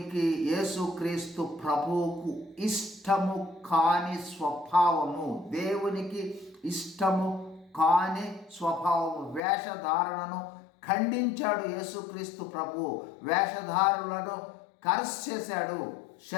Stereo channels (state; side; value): drops out; right; at 9.4 s